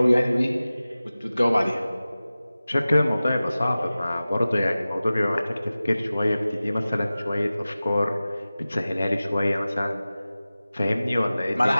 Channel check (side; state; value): both; inverted; correlation -0.97